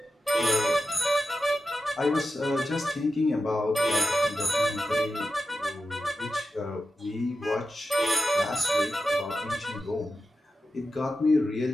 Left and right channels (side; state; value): both; normal; correlation 0.91